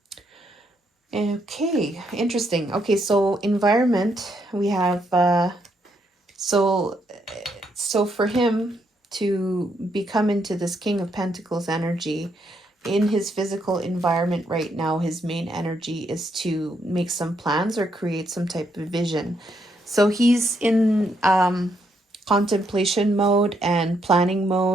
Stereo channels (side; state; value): both; normal; correlation 0.76